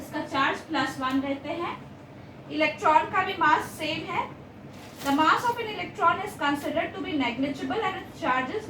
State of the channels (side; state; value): both; identical; correlation 1.00